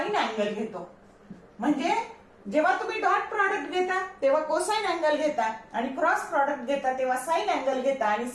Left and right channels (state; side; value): identical; both; correlation 1.00